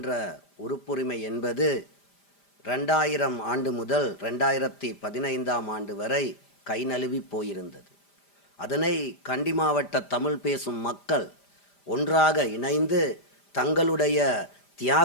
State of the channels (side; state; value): right; late; 5.0 ms